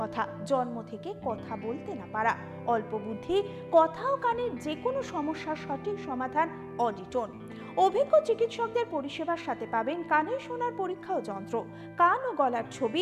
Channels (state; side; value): identical; both; correlation 1.00